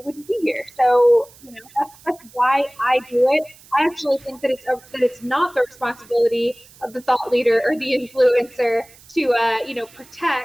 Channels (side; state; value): right; noise; hiss, 24 dB below the sound